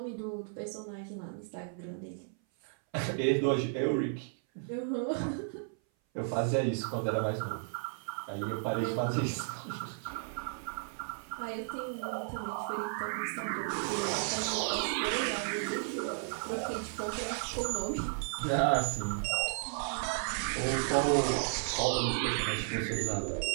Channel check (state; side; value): silent; left; 55 dB below the other